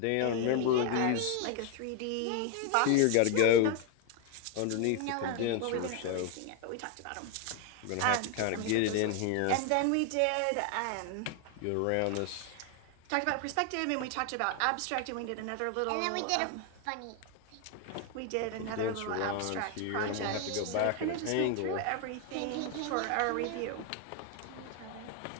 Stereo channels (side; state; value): both; different; correlation 0.01